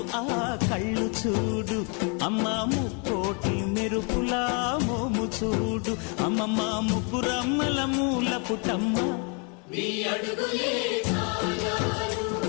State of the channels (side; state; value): right; quieter; 35.5 dB